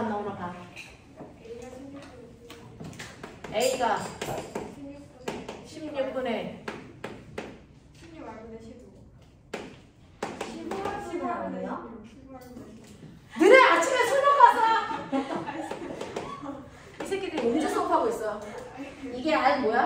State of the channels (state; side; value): identical; both; correlation 1.00